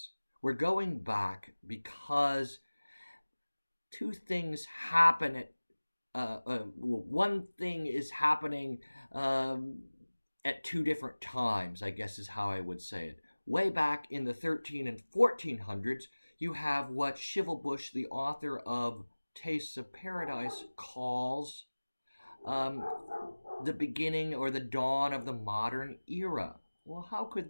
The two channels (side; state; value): both; inverted; correlation -1.00